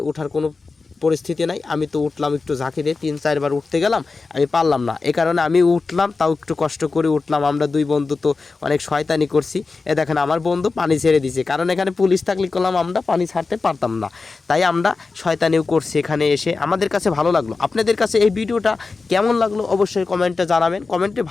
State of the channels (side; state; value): right; quieter; 4.1 dB